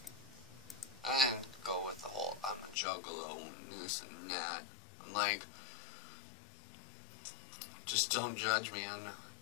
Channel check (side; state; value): right; drops out; at 2.8 s